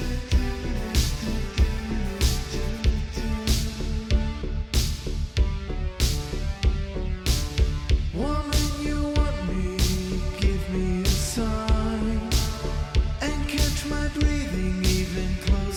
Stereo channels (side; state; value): both; identical; correlation 1.00